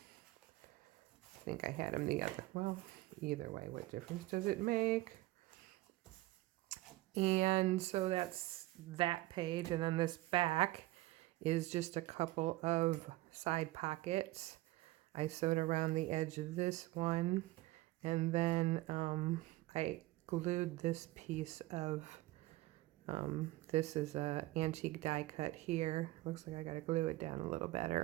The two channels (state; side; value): quieter; left; 18.1 dB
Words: I think I had them the other, well, either way, what difference does it make? And so that's that page, and then this back is just a couple of side pockets. I sewed around the edge of this one, and then I glued this piece of this is a antique die cut here. Looks like I gotta glue it down a little